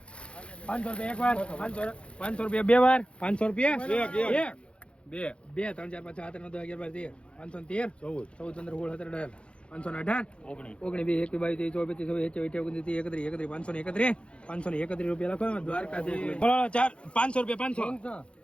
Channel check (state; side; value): late; right; 0.058 ms